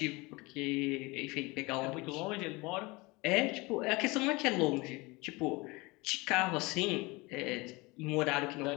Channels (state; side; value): quieter; right; 24.2 dB